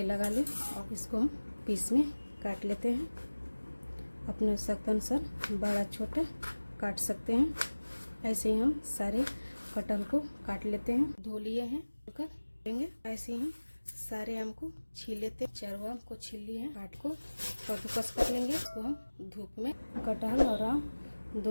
लगा लें और इसको हम पीस में काट लेते हैं। अपने आवश्यकता अनुसार बड़ा छोटा काट सकते हैं। ऐसे ही हम सारे कटहल को काट लेते हैं। धो लिए हैं, लेंगे। ऐसे ही हम सारे आम को छील लेते हैं। चारों आम को छील लिए हैं। काट को कद्दूकस कर लेंगे। इसको हम धूप में, कटहल और आम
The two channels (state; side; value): inverted; both; correlation -1.00